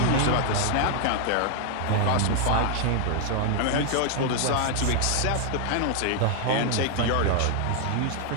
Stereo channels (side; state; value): both; different; correlation 0.00